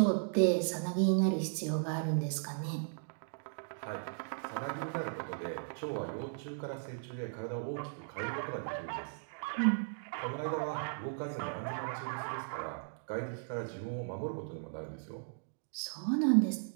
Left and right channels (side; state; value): left; silent; digital silence